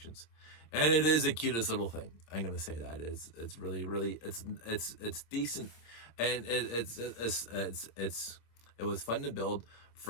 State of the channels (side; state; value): right; late; 26 ms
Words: And it is the cutest little thing. I'm going to say that. It's really, really, it's decent. And it was fun to build